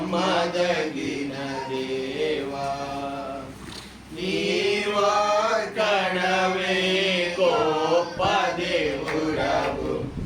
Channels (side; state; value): both; identical; correlation 1.00